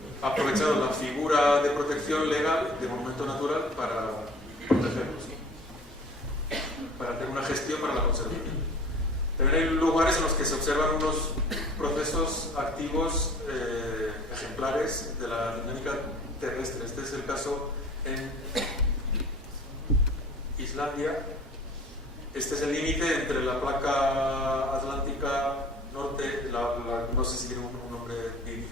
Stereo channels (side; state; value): both; normal; correlation 0.47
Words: aprovechado la figura de protección legal de monumento natural para protegerlos, para hacer una gestión para la conservación. También hay lugares en los que se observan unos procesos activos ejemplares de la dinámica terrestre. Este es el caso en Islandia. Este es el límite entre la placa atlántica norte, no sé si tiene un nombre bien